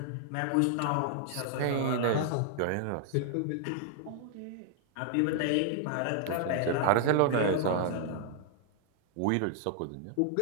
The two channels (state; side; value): different; both; correlation -0.01